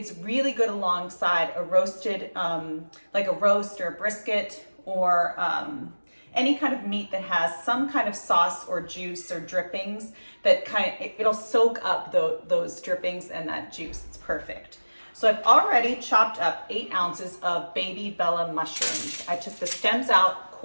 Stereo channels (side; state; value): both; inverted; correlation -1.00